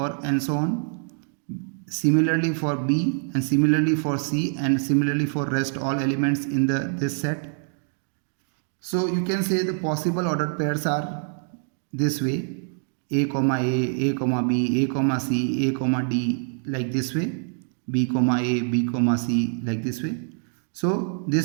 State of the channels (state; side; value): silent; left; 55 dB below the other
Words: and so on. Similarly for B and similarly for C and similarly for rest all elements in this set. So you can say the possible ordered pairs are this way: A comma A comma B, A comma C, A comma D, like this way, B comma A, B comma C, like this way. So